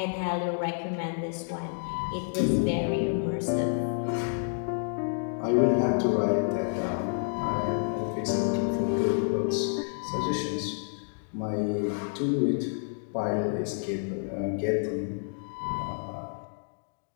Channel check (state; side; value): silent; right; digital silence